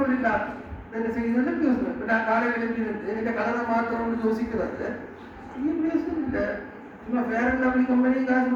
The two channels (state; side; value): identical; both; correlation 1.00